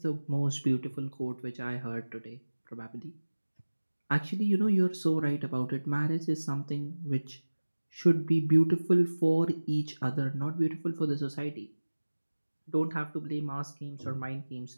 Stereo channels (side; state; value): both; inverted; correlation -1.00